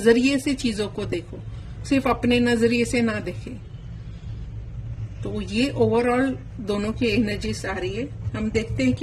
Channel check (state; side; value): identical; both; correlation 1.00